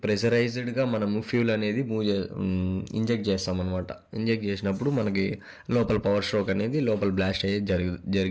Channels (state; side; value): identical; both; correlation 1.00